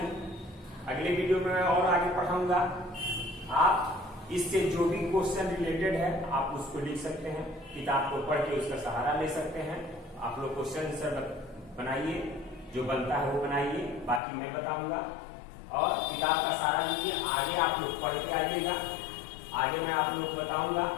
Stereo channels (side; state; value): right; drops out; at 14.2 s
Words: अगले वीडियो में मैं और आगे पढ़ाऊंगा। आप इससे जो भी क्वेश्चन रिलेटेड है आप उसको लिख सकते हैं, किताब को पढ़ के उसका सहारा ले सकते हैं। आप लोग क्वेश्चन आंसर बनाइए, जो बनता है वो बनाइए, बाकी मैं बताऊंगा। और किताब का सहारा लीजिए, आगे आप लोग पढ़ के आइएगा। आगे मैं आप लोग बताऊंगा